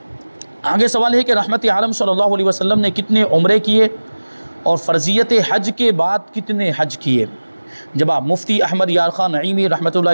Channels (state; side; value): inverted; both; correlation -1.00